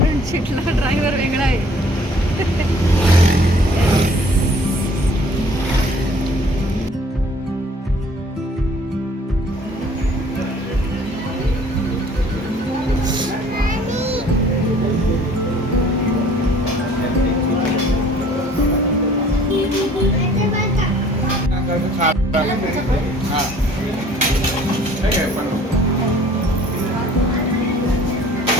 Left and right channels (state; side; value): normal; both; correlation 0.54